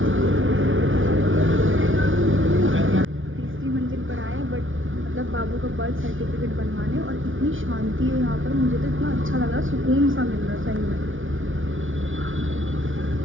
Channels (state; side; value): late; left; 0.57 ms